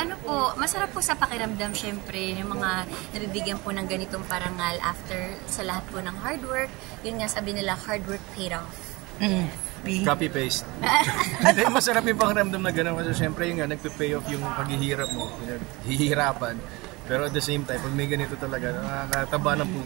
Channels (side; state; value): left; quieter; 23.6 dB